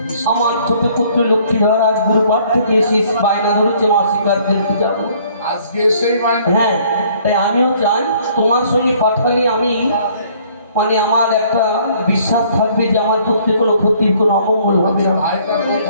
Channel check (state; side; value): inverted; both; correlation -0.60